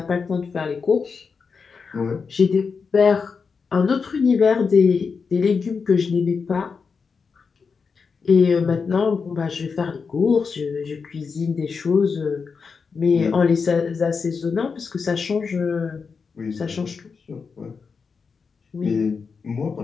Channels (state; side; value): quieter; right; 5.3 dB